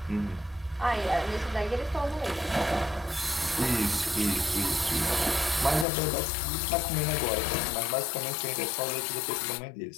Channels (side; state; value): right; drops out; at 5.9 s